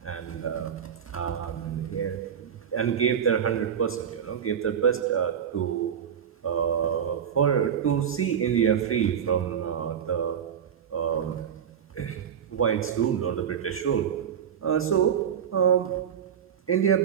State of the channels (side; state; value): left; quieter; 8.3 dB